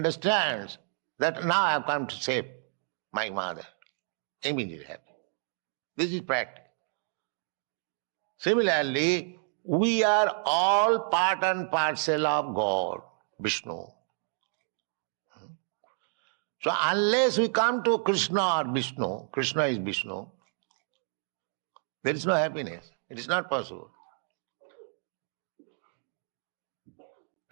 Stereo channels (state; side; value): silent; left; 58 dB below the other